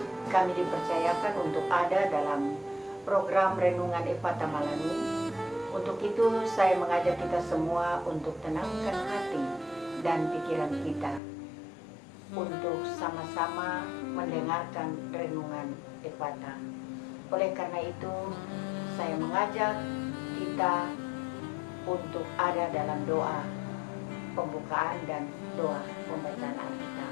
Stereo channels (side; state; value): right; drops out; at 11.2 s